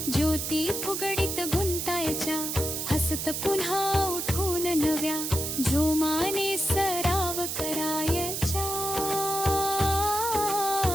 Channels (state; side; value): noise; right; hiss, 3 dB below the sound